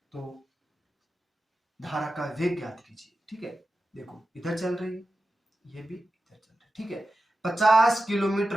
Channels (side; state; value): both; normal; correlation 0.92